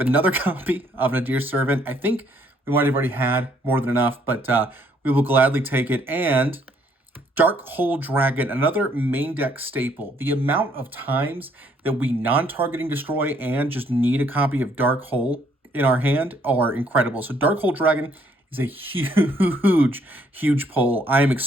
another copy of Nadir Servant. I think we might have already had more than enough, but we will gladly take it. And Dark Hole Dragon, another main deck staple. The amount of times that we non-targeting destroy and just need a copy of Dark Hole in our hand are incredible. So Dark Hole Dragon is a huge, huge pull. I am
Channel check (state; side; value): normal; both; correlation 0.67